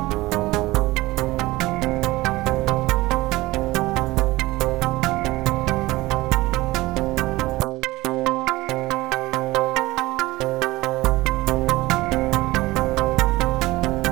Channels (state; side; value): quieter; left; 19.4 dB